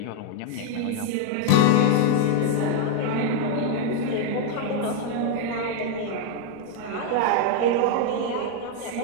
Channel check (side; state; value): both; different; correlation 0.00